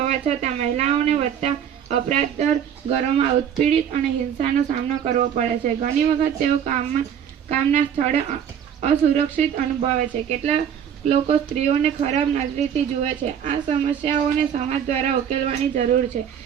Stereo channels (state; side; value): quieter; left; 8.7 dB